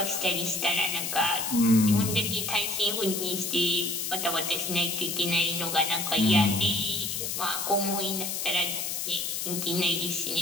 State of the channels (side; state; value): left; noise; hiss, 3 dB below the sound